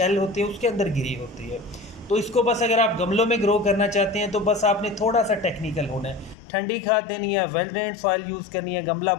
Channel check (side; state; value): right; drops out; at 6.4 s